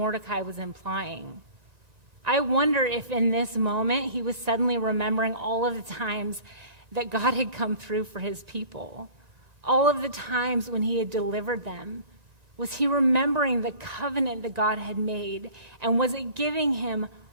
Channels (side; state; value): left; late; 5.9 ms